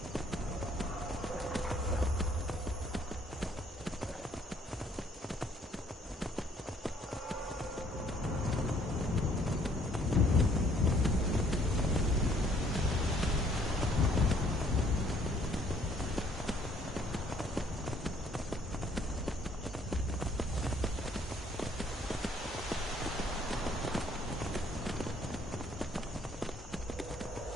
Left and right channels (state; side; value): normal; both; correlation 0.63